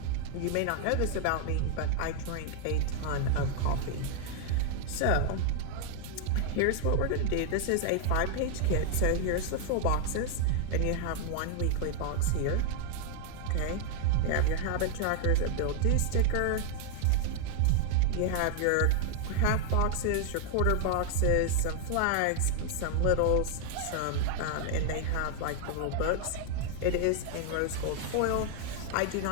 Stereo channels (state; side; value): different; both; correlation 0.00